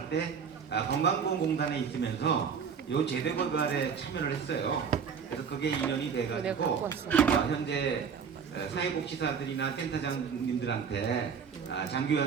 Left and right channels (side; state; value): left; quieter; 6.6 dB